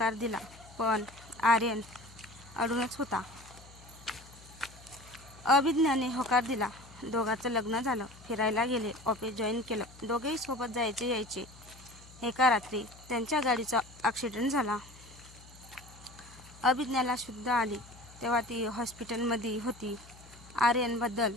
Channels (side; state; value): left; noise; hum, 21 dB below the sound